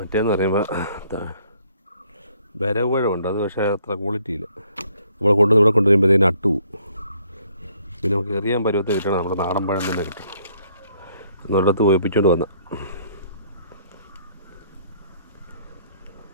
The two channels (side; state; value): both; inverted; correlation -0.65